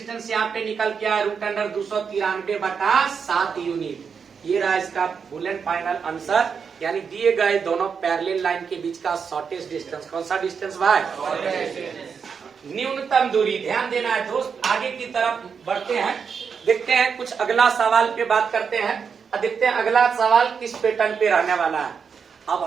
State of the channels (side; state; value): left; quieter; 6.3 dB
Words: यहाँ पे निकल के आया रूट अंडर 293 बटा 7 यूनिट। ये रहा इसका फुल एंड फाइनल आंसर, यानी दिए गए दोनों पैरेलल लाइन के बीच का शॉर्टेस्ट डिस्टेंस। कौन सा डिस्टेंस भाई? न्यूनतम दूरी। ध्यान देना है दोस्त, आगे की तरफ बढ़ते हैं, देखते हैं कुछ अगला सवाल पे बात करते हैं और देखते हैं अगला सवाल किस पैटर्न पे रहने वाला है। अब